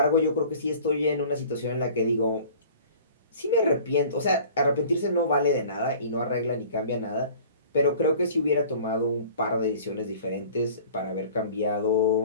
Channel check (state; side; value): inverted; both; correlation -0.47